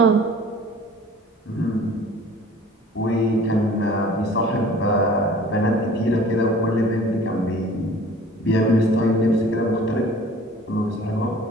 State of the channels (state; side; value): normal; both; correlation 0.48